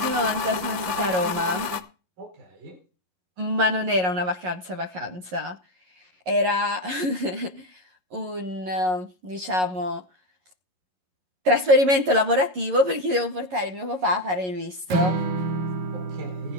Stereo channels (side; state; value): left; late; 11 ms